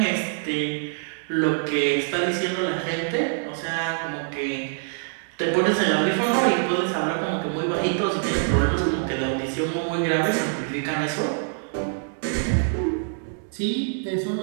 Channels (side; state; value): left; silent; digital silence